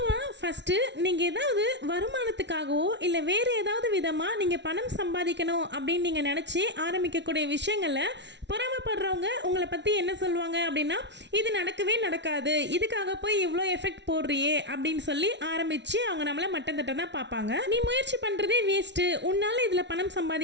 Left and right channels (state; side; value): late; left; 0.51 ms